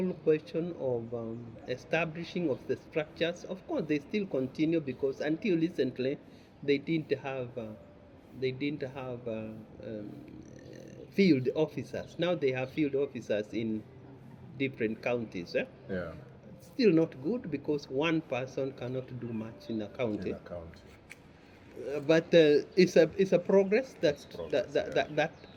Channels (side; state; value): both; identical; correlation 1.00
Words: question of establishing of the structures, of course, they still continue, because until recently they didn't have field officers. Now they have field officers in different counties. Yeah. Still not good because one person cannot do much in a county. In a county. But it's a progress It's progress,